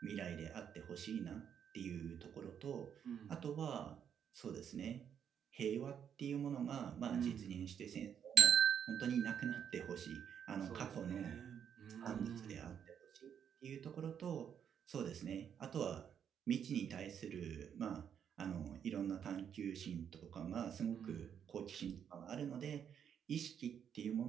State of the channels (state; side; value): quieter; left; 8.3 dB